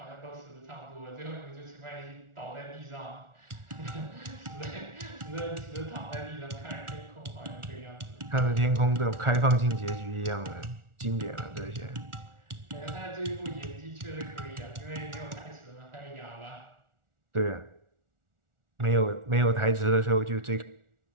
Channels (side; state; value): left; late; 1.4 ms